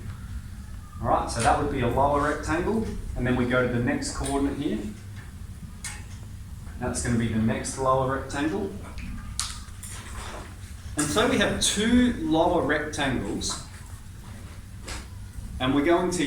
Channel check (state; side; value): identical; both; correlation 1.00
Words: Alright, so that would be a lower rectangle. And then we go to the next coordinate here. That's going to be the next lower rectangle. And so we have two lower rectangles. And we're going to